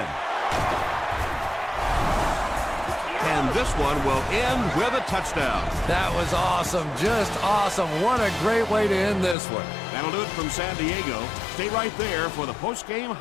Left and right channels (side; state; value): right; drops out; at 9.3 s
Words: And this one will end with a touchdown. That was awesome, just awesome. What a great way to end this one. That'll do it from San Diego. Stay right there for the post-game